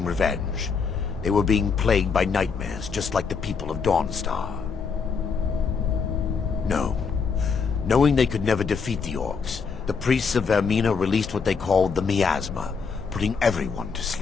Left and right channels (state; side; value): quieter; right; 5.5 dB